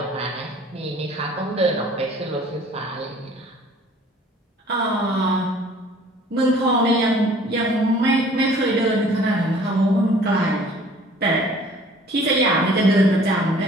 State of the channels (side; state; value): both; normal; correlation 0.52